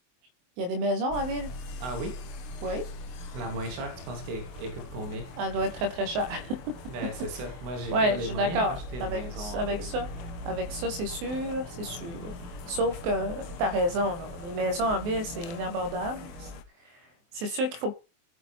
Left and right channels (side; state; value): left; late; 23 ms